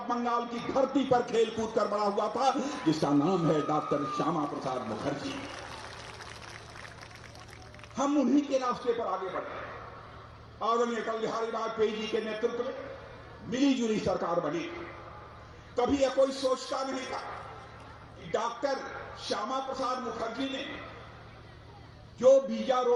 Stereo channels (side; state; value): both; identical; correlation 1.00